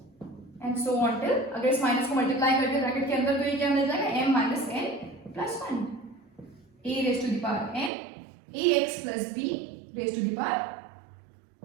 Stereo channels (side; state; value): left; drops out; at 7.9 s